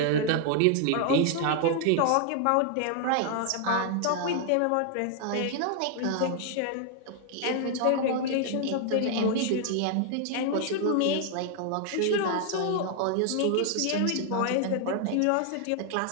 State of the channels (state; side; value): different; both; correlation 0.00